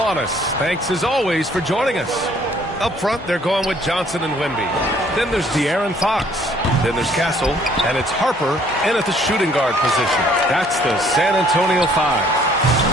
us. Thanks, as always, for joining us. Up front, they're going with Johnson and Wemby. Then there's De'Aaron Fox. Then there's Castle. And it's Harper in at the shooting guard position. That's the San Antonio 5.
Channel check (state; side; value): normal; both; correlation 0.61